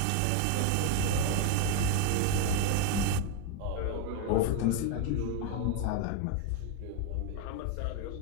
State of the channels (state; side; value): different; both; correlation 0.02